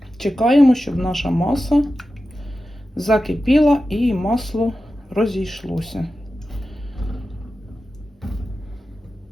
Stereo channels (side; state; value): both; normal; correlation 0.93